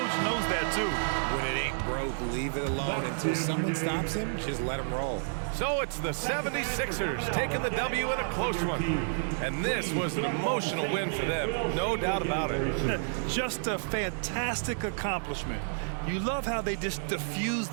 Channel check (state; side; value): silent; left; digital silence